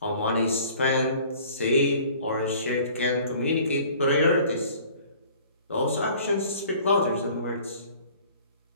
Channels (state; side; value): inverted; both; correlation -0.51